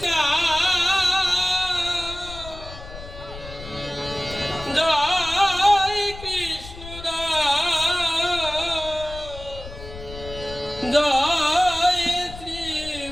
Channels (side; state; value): left; noise; rumble, 14 dB below the sound